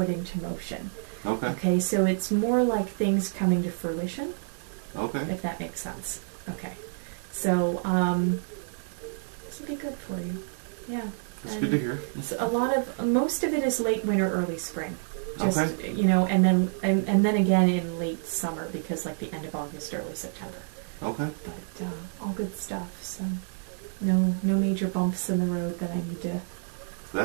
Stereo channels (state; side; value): silent; left; digital silence